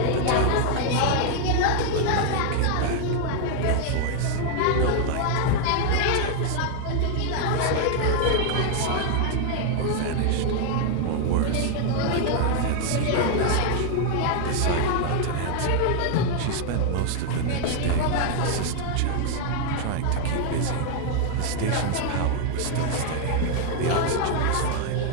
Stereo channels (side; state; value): both; different; correlation 0.00